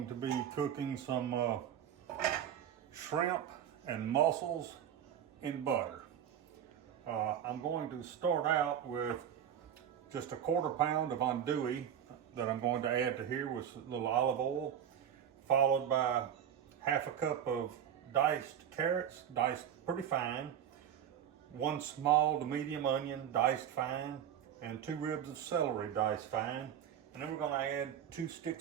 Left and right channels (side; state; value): left; quieter; 9.5 dB